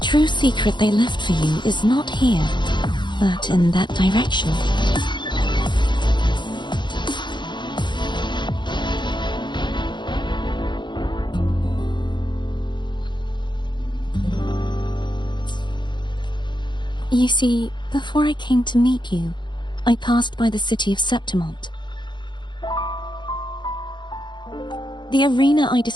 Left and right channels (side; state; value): right; late; 0.22 ms